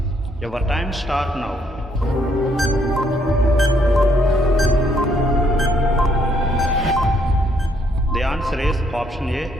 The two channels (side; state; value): both; normal; correlation 0.70